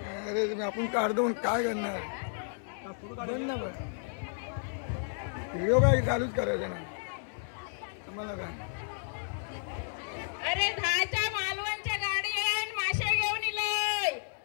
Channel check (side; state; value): right; silent; 56 dB below the other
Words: अरे आपण काढतो काय करणार. व्हिडिओ काय चालूच करायचं ना आम्हाला काय. अरे 10च्या मालवणच्या गाडी आहे. मासे घेऊन इलय.